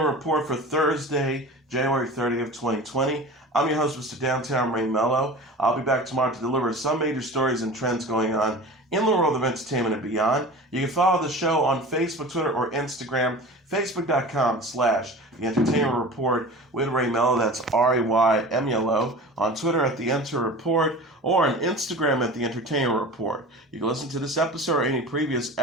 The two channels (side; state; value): both; normal; correlation 0.36